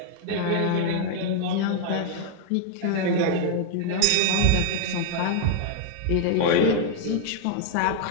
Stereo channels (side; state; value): both; different; correlation 0.00